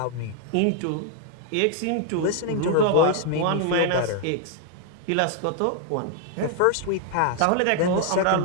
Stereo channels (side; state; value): both; different; correlation 0.00